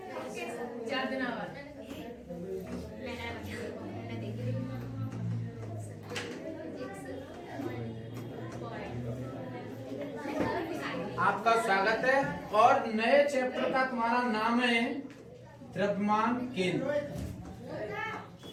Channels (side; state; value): both; identical; correlation 1.00